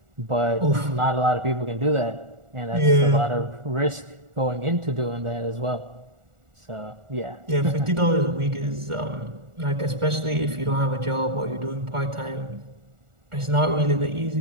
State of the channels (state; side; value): late; left; 1.4 ms